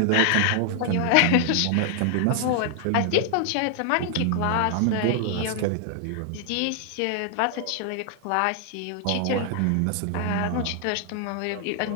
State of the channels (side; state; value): both; different; correlation 0.00